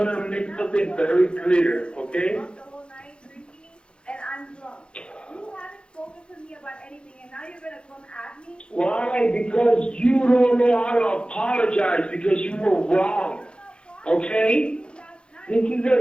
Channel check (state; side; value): late; right; 0.054 ms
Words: make something very clear, okay? The whole night drinking, and I'm drunk. You haven't spoken to me about anything, and now you're gonna come at me? Why? Because you don't know how to apologize because you were wrong, okay? This is